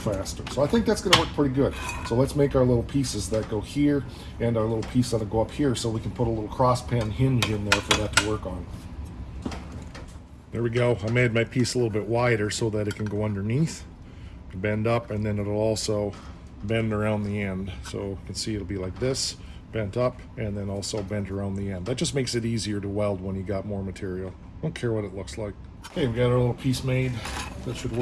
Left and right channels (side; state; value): both; identical; correlation 1.00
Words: So I think that's gonna work pretty good. So let's make our little pieces that go here and our little piece that'll go up here so we can put a little cross pen hinge in there for that to work on. There we go. I made my piece a little bit wider so that it can go underneath, bend up, and then it'll also bend around the end. So you can see it'll be like this, bent up, and then also bent around the end. That just makes it easier to weld when you got more material. Don't care what it looks like. Okay, we got our little piece made. That should